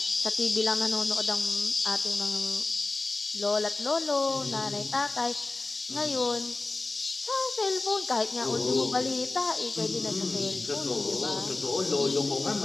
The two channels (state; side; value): quieter; right; 3.3 dB